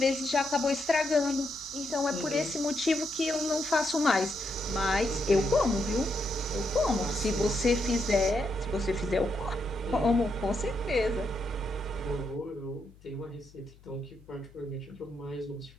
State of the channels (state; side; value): noise; left; hum, 25 dB below the sound